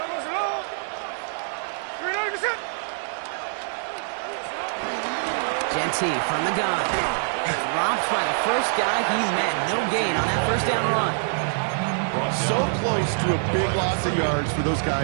Ncaa from the gun. Dropped by the first guy he met. No gain on that first down run. So close to a big loss of yards for those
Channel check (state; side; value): silent; left; digital silence